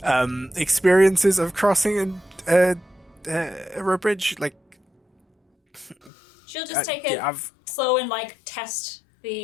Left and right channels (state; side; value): drops out; right; at 6.1 s